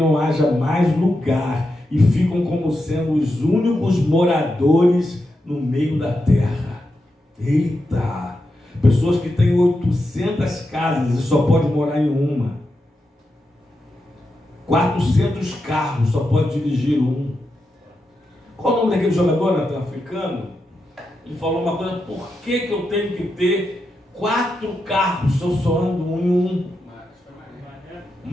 haja mais lugar, e ficam como sendo os únicos moradores no meio da terra. Eita! Pessoas que têm 800 casas e só pode morar em uma. 400 carros, só pode dirigir um. Qual o nome daquele jogador, Natan, africano? Ele falou uma coisa: por que eu tenho que ter 4 carros se eu só ando em um?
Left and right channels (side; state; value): both; normal; correlation 0.87